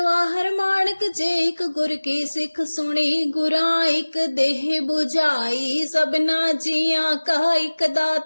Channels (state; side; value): inverted; both; correlation -1.00